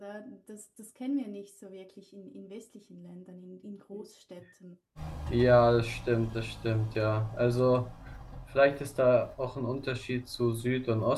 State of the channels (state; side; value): identical; both; correlation 1.00